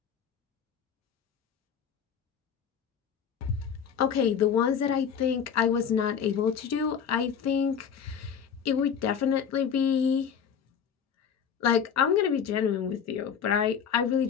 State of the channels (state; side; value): quieter; right; 7.4 dB